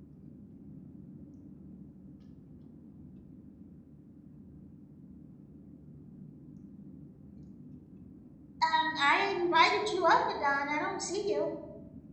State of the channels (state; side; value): identical; both; correlation 1.00